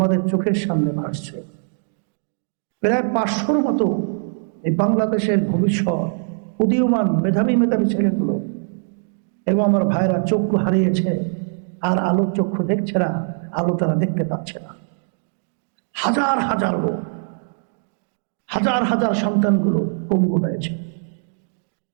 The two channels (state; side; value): silent; left; digital silence